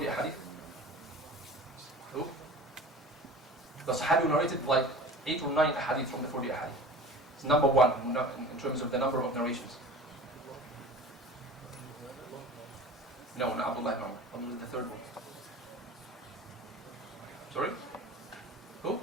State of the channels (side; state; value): both; normal; correlation 0.39